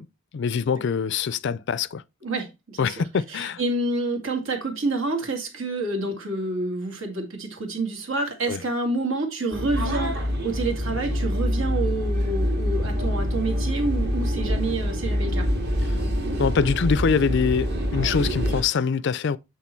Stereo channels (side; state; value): both; normal; correlation 0.55